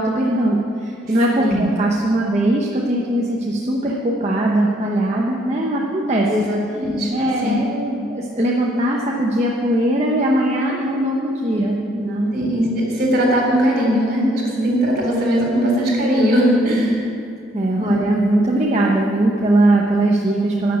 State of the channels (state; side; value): normal; both; correlation 0.69